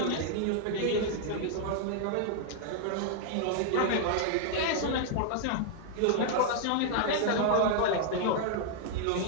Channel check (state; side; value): different; both; correlation -0.01